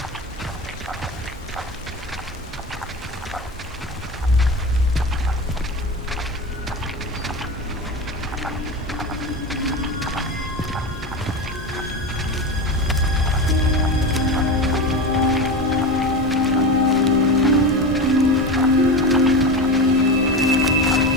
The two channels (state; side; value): normal; both; correlation 0.23